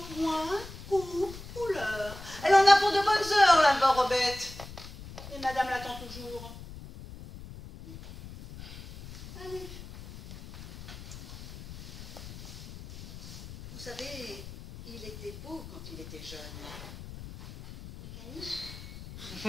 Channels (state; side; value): noise; left; rumble, 14 dB below the sound